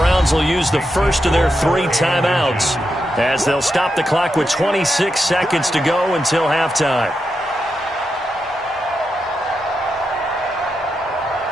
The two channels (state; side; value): normal; both; correlation 0.86